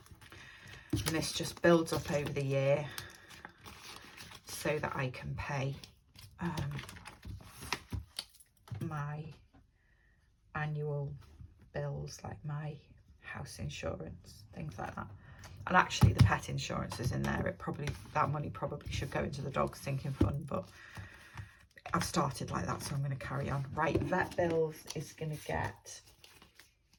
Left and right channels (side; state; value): both; identical; correlation 1.00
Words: And this just builds up over the year so that I can pay my annual bills like my house insurance, things like that. And actually the pet insurance is in there. That money probably should go into the dog sinking fund, but I've started like that, so I'm going to carry on. Right, vet bills is going to get